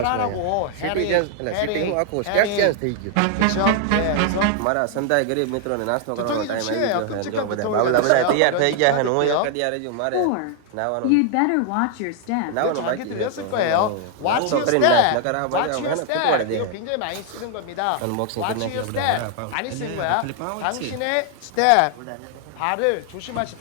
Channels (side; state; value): both; different; correlation 0.00